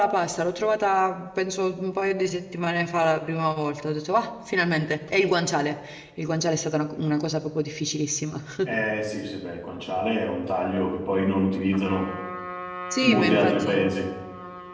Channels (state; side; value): identical; both; correlation 1.00